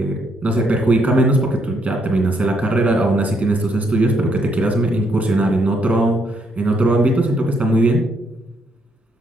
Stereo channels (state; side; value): normal; both; correlation 0.73